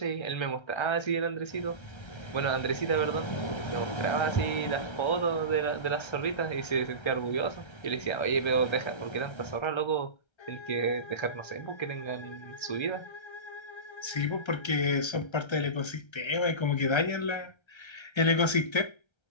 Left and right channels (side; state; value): right; late; 1.3 ms